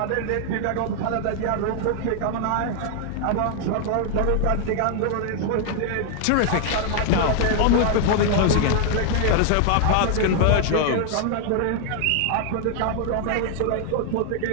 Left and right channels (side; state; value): both; different; correlation 0.00